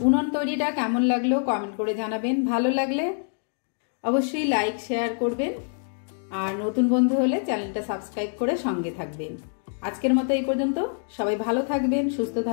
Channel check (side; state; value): right; silent; 61 dB below the other